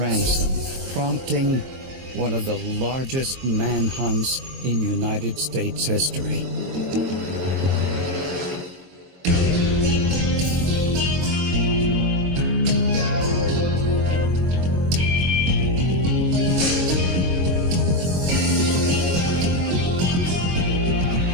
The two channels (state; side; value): late; left; 23 ms